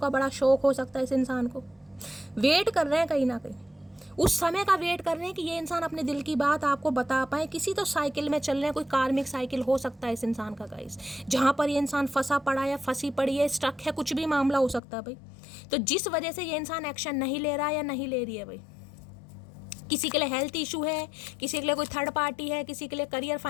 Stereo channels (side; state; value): right; drops out; at 14.8 s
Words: बड़ा शौक हो सकता है इस इंसान को। वेट कर रहे हैं कहीं ना कहीं, उस समय का वेट कर रहे हैं कि ये इंसान अपने दिल की बात आपको बता पाए। किसी तो साइकिल में चल रहे हैं, कोई कार्मिक साइकिल हो सकता है इस इंसान का गाइस, जहाँ पर ये इंसान फंसा पड़ा है, फंसी पड़ी है, स्टक है, कुछ भी मामला हो सकता है भाई। तो जिस वजह से ये इंसान एक्शन नहीं ले रहा या नहीं ले रही है भाई, किसी के लिए हेल्थ इशू है, किसी के लिए कोई थर्ड पार्टी है, किसी के लिए करियर,